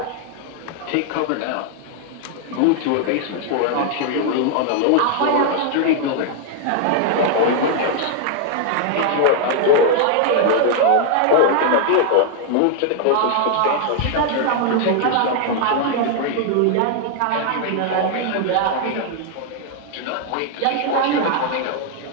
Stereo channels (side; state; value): both; different; correlation 0.00